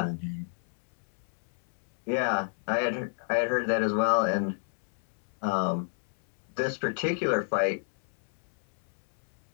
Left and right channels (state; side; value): silent; right; 58 dB below the other